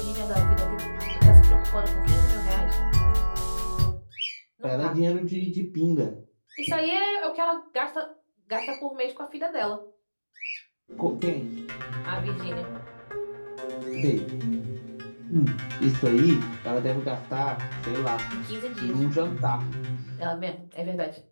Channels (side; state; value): both; inverted; correlation -1.00